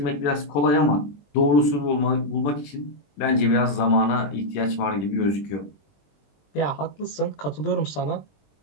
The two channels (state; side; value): late; right; 21 ms